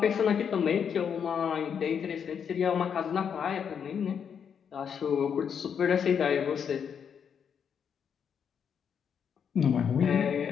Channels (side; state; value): right; quieter; 7.5 dB